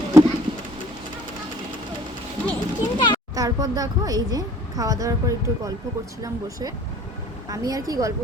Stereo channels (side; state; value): both; normal; correlation 0.52